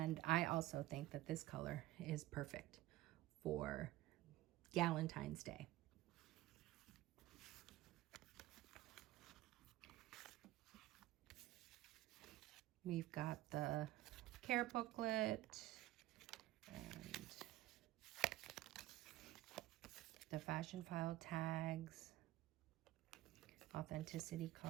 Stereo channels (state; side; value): quieter; left; 16.0 dB